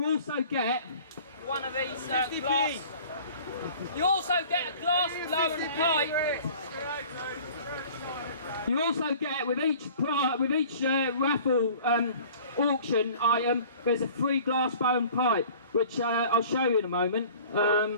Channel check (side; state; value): both; inverted; correlation -0.47